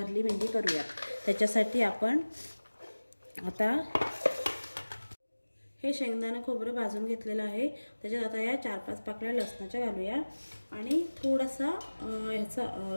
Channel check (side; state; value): both; inverted; correlation -1.00